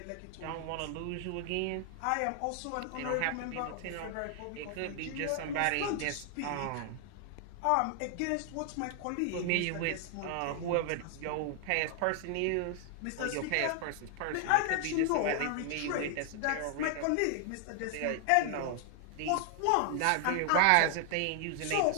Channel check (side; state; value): both; different; correlation 0.00